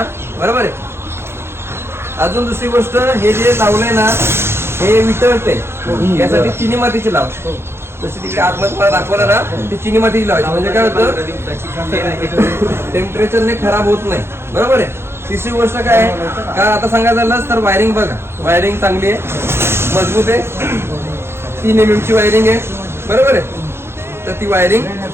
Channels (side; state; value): left; late; 0.12 ms